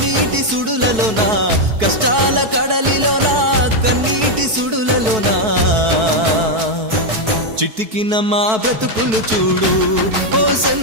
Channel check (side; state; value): left; late; 4.6 ms